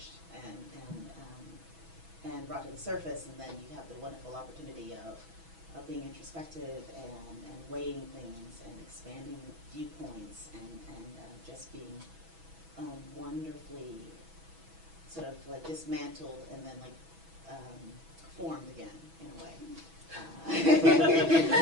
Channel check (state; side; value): late; left; 6.1 ms